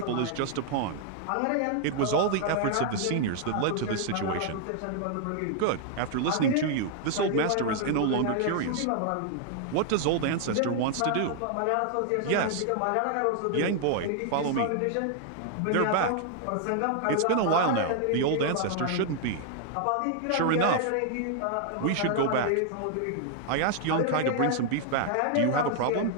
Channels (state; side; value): different; both; correlation 0.00